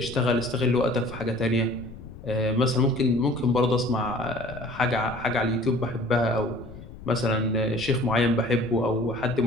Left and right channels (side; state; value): left; noise; rumble, 15 dB below the sound